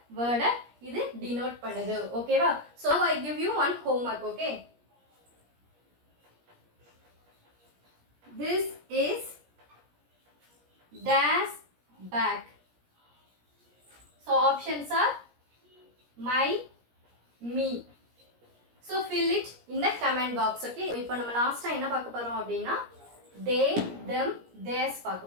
வேர்டை இது denote பண்ணுது ஓகேவா so I give you one homework okay this is dash bag so options are my me so fill it in the comment box okay இப்போ நம்ம லாஸ்டா என்ன பார்க்க போறோம் அப்படினா they them theirs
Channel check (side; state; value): left; late; 17 ms